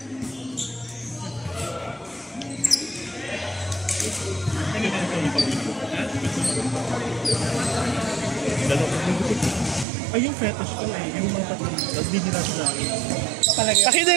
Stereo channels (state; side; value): drops out; left; at 9.9 s